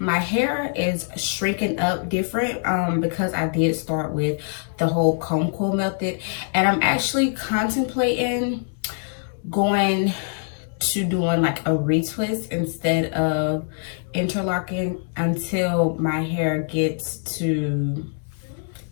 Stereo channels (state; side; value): silent; right; 63 dB below the other